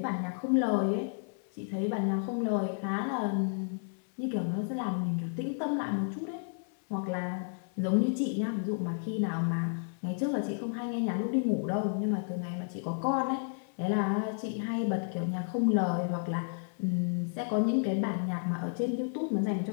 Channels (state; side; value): silent; right; digital silence